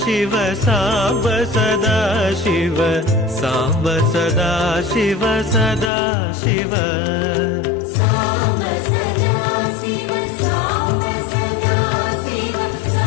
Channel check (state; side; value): drops out; right; at 5.9 s